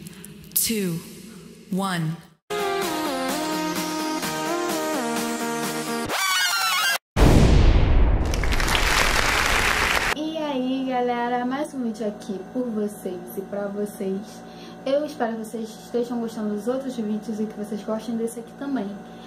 2, 1. E aí galera, mais um vídeo aqui por vocês e pra vocês. Eu espero que vocês estejam gostando dos outros vídeos e que vocês gostem desse aqui também.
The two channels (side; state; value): both; identical; correlation 1.00